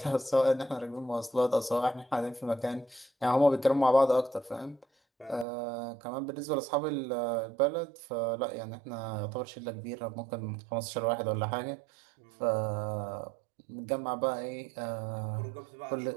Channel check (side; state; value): left; drops out; at 5.5 s